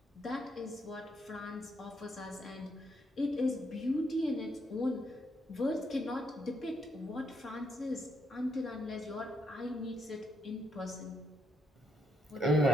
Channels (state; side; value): normal; both; correlation 0.76